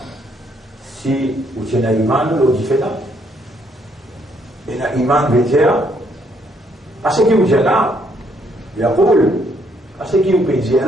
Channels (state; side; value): normal; both; correlation 0.70